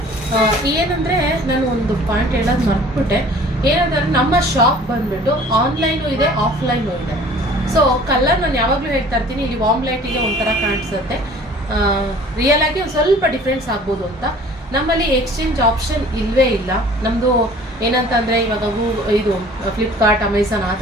ಏನಂದರೆ ನಾನು ಒಂದು ಪಾಯಿಂಟ್ ಹೇಳೋದು ಮರ್ತ್ಬಿಟ್ಟೆ. ಏನಂದರೆ ನಮ್ಮ ಶಾಪ್ ಬಂದ್ಬಿಟ್ಟು ಆನ್ಲೈನು ಇದೆ, ಆಫ್ಲೈನು ಇದೆ. ಸೊ ಕಲರ್ ನಾನು ಯಾವಾಗಲೂ ಹೇಳ್ತಾ ಇರ್ತೀನಿ, ಇಲ್ಲಿ ವಾಮ್ ಲೈಟಿಗೆ ಒಂಥರ ಕಾಣಿಸುತ್ತೆ, ರಿಯಲ್ ಆಗಿ ಒಂದು ಸ್ವಲ್ಪ ಡಿಫ್ರೆನ್ಸ್ ಆಗ್ಬೋದು ಅಂತ. ನಮ್ಮಲ್ಲಿ ಎಕ್ಸ್ಚೇಂಜ್ ಆಪ್ಷನ್ ಇಲ್ಲವೇ ಇಲ್ಲ. ನಮ್ಮದು ಏನಂತಂದರೆ ಇವಾಗ ಇದು ಫ್ಲಿಪ್ಕಾರ್ಟ್, ಅಮೆಝಾನ್ ಆ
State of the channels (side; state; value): both; normal; correlation 0.49